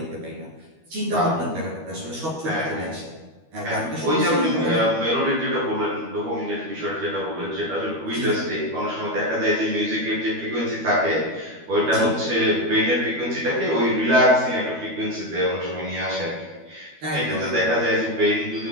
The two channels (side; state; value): left; late; 12 ms